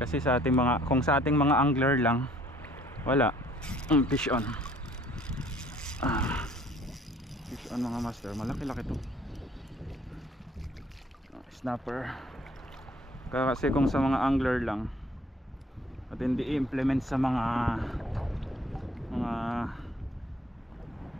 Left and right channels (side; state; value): both; normal; correlation 0.58